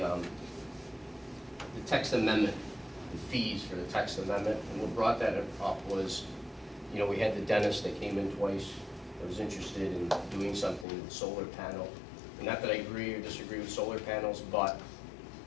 text amendment, the fees for the text amendment. And what brought that up was, you know, we had the dentist that came in twice that was interested in doing something with solar panel. And not that I agree or disagree with solar panels, but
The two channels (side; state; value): right; drops out; at 10.9 s